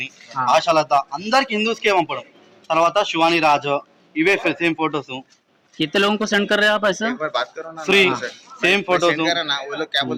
ఆశాలత అందరికి హిందూస్కే పంపడం. తర్వాత శివాని రాజు ఇవే సేమ్ ఫోటోస్. कितने लोगों को सेंड कर रहे हैं आप ऐसा? एक बार बात करो ना फ्री सेम फोटोस ना वो लोग क्या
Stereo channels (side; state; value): both; identical; correlation 1.00